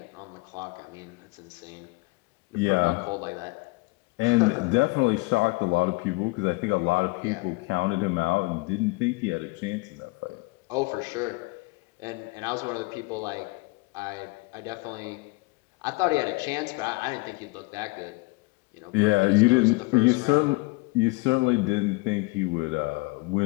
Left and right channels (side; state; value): right; quieter; 25.5 dB